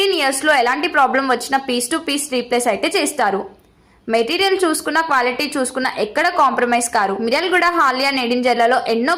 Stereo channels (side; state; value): both; identical; correlation 1.00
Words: years లో ఎలాంటి ప్రాబ్లం వచ్చినా పీస్ టు పీస్ రీప్లేస్ అయితే చేస్తారు. మెటీరియల్ చూసుకున్న, క్వాలిటీ చూసుకున్న ఎక్కడ కాంప్రమైజ్ కారు. మిర్యాలగూడ, హాలియా, నెడింజర్లలో ఎన్నో